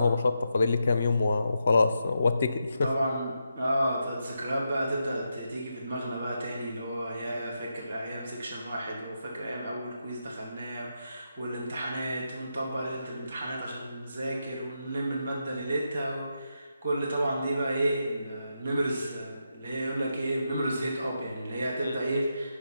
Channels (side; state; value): both; inverted; correlation -0.84